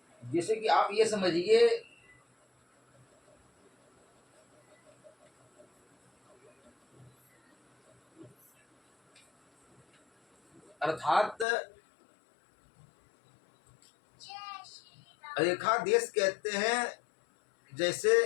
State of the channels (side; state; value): right; drops out; at 11.5 s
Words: जैसे कि आप ये समझिए अर्थात रेखा देश कहते हैं जैसे